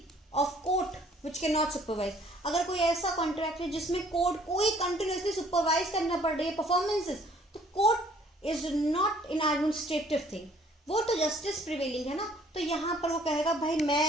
of court which can not supervise. अगर कोई ऐसा कॉन्ट्रैक्ट है जिसमें कोर्ट कोई कंटिन्यूअसली सुपरवाइज करना पड़ रही है परफॉर्मेंसेस, तो court is not in administrative thing, वो तो जस्टिस प्रिवेलिंग है ना, तो यहाँ पर वो कहेगा भाई मैं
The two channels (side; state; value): both; normal; correlation 0.59